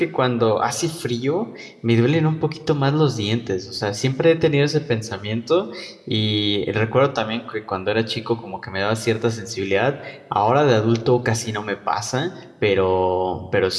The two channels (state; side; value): identical; both; correlation 1.00